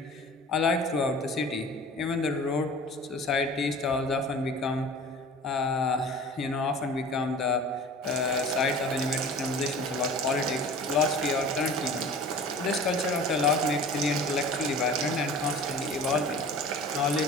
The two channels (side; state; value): both; normal; correlation 0.41